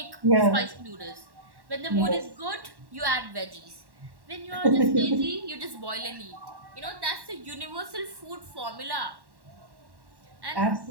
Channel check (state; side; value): late; left; 1.1 ms